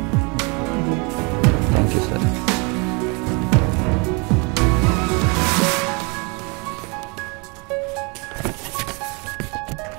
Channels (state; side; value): quieter; left; 31.1 dB